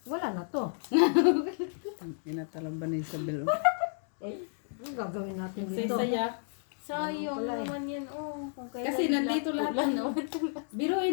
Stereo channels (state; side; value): silent; right; digital silence